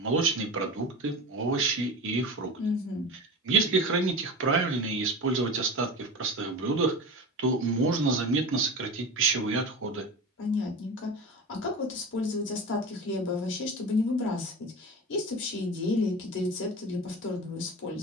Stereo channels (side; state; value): both; normal; correlation 0.30